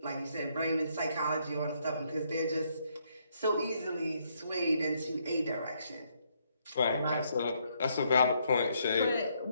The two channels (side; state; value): both; inverted; correlation -0.73